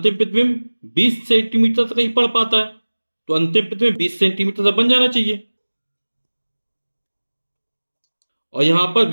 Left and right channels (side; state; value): both; inverted; correlation -1.00